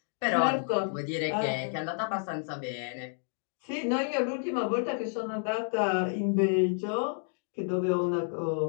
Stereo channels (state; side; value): silent; right; 58 dB below the other